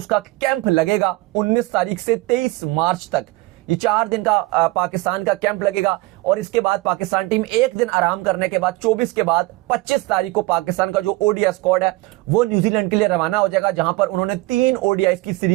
कैंप लगेगा 19 तारीख से 23 मार्च तक, ये 4 दिन का पाकिस्तान का कैंप लगेगा। और इसके बाद पाकिस्तान टीम एक दिन आराम करने के बाद 24 के बाद 25 तारीख को पाकिस्तान का जो ओडीआई स्क्वाड है वो न्यूजीलैंड के लिए रवाना हो जाएगा, जहां पर उन्होंने 3 ओडीआई की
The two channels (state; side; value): quieter; left; 20.7 dB